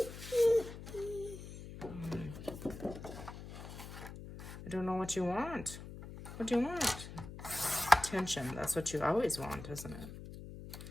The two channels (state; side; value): noise; left; hum, 12 dB below the sound